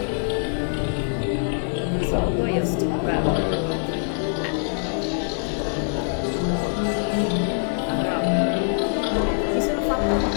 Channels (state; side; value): silent; right; digital silence